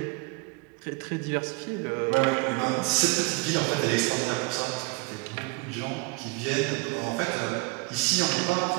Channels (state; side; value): quieter; left; 28.1 dB